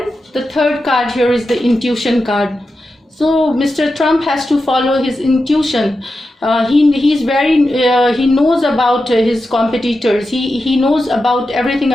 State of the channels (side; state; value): both; normal; correlation 0.90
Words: the third card here is the intuition card. So Mr. Trump has to follow his intuition. He knows about his competitors. He knows about everything